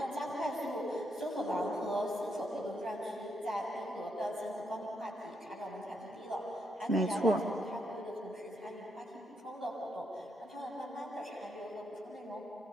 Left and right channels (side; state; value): both; normal; correlation 0.79